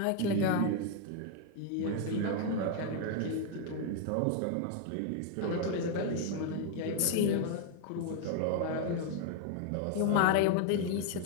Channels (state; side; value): different; both; correlation 0.00